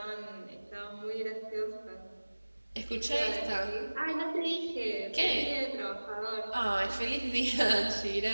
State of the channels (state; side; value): inverted; both; correlation -1.00